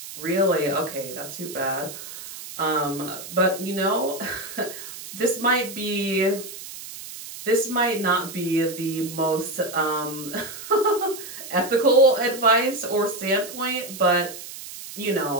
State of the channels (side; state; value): right; noise; hiss, 12 dB below the sound